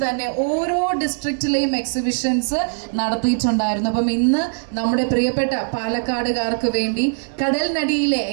തന്നെ ഓരോ ഡിസ്ട്രിക്റ്റിലെയും എക്സിബിഷൻസ് നടത്തിയിട്ടുണ്ടായിരുന്നു. അപ്പം ഇന്ന് നമ്മുടെ പ്രിയപ്പെട്ട പാലക്കാടുകാർക്ക് വേണ്ടി കടൽനടിയിലെ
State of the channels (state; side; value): silent; left; digital silence